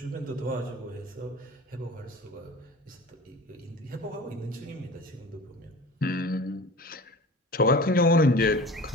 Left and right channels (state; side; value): normal; both; correlation 0.38